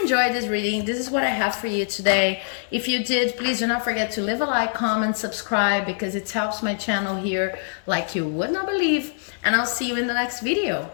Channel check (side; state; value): right; silent; 63 dB below the other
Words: enjoyed this reading. This is what I have for you today. If you did, please do not forget to leave a like, comment, subscribe, because it helps my channel here like you would not believe. And I'll see you in the next video.